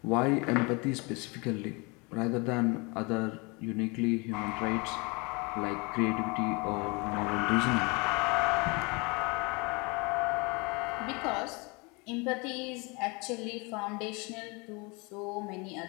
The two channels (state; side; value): quieter; right; 28.5 dB